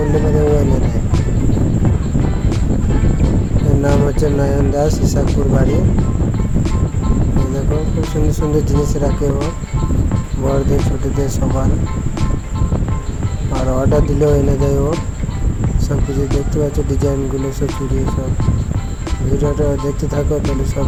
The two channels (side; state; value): both; identical; correlation 1.00